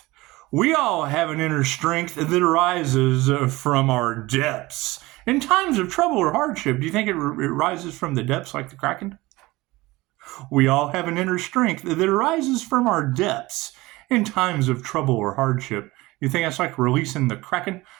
We all have an inner strength that arises from our depths. In times of trouble or hardship, do you think it rises from the depths like the Kraken? We all have an inner strength that arises from our depths in times of trouble or hardship. You think that's like releasing the Kraken?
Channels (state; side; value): quieter; left; 20.4 dB